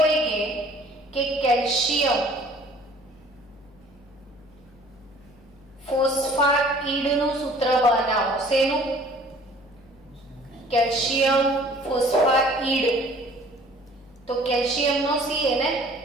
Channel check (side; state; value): left; noise; hum, 27 dB below the sound